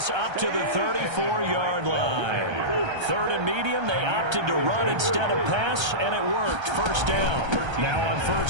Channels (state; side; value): late; left; 1.3 ms